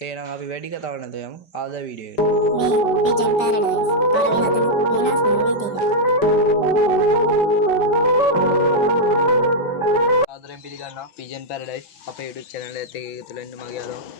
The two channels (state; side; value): late; right; 5.1 ms